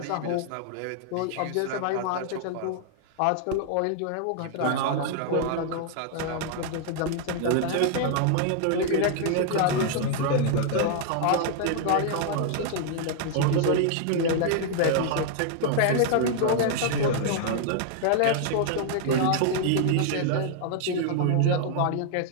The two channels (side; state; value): both; different; correlation -0.01